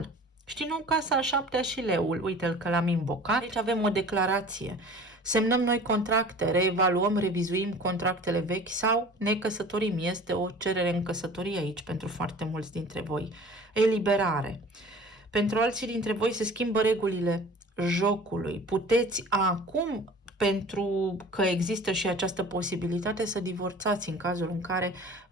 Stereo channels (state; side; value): normal; both; correlation 0.44